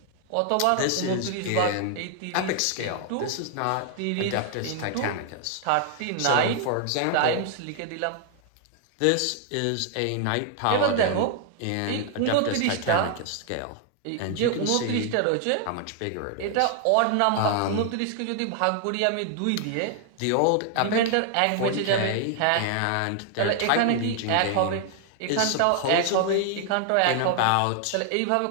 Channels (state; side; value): different; both; correlation 0.00